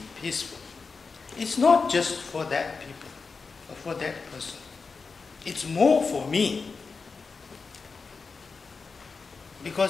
peaceful, it's not just for that people or for that person. It's more for me.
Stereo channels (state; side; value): quieter; right; 4.7 dB